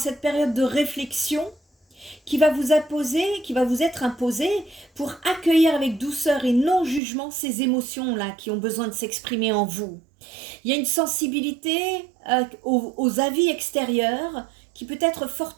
période de réflexion qui va vous être imposée pour accueillir avec douceur et non-jugement ces émotions-là qui ont besoin de s'exprimer en vous. Il y a une sensibilité aux avis extérieurs qui peut être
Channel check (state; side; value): drops out; left; at 7.0 s